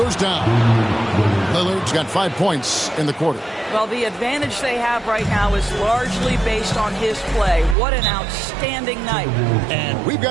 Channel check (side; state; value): left; drops out; at 7.8 s